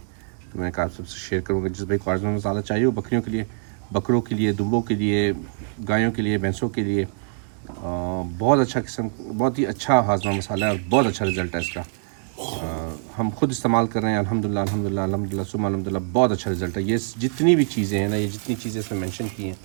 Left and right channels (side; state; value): left; silent; 62 dB below the other